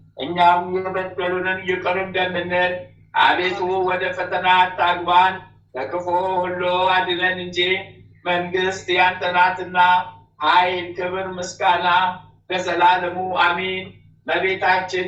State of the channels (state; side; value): identical; both; correlation 1.00